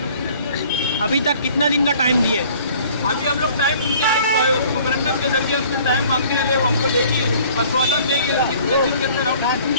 से। अभी तक कितना दिन का टाइम दिए? अभी हम लोग टाइम उनके आज मेमोरेंडम के जरिए उनसे टाइम मांगते हैं, वो हमको देगी, आश्वासन देगी कितने दिन के अंदर हम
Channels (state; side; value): inverted; both; correlation -0.53